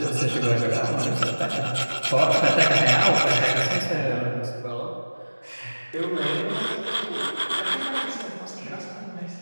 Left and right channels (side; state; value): both; inverted; correlation -1.00